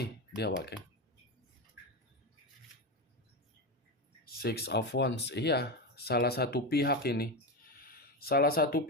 dia wageng. Six of Wands, iya, salah satu pihak ini. Salah satu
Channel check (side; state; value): both; normal; correlation 0.16